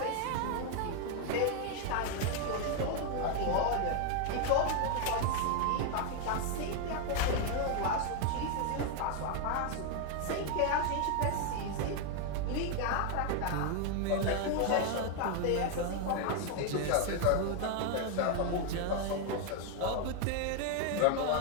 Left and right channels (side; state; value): both; different; correlation 0.01